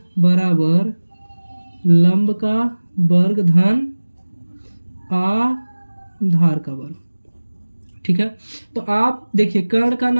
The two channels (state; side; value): inverted; both; correlation -1.00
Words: बराबर लंब का वर्ग धन आधार का वर्ग। ठीक है, तो आप देखिए कर्ण का